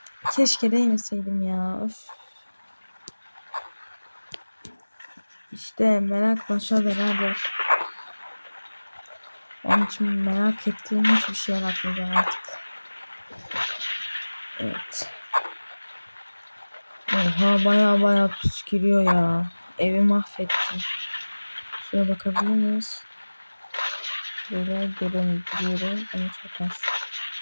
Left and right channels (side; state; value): both; inverted; correlation -1.00